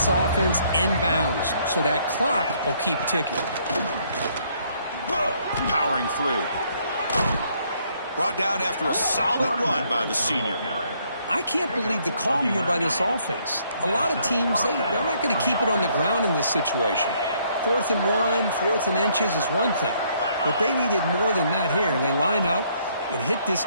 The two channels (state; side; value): inverted; both; correlation -0.68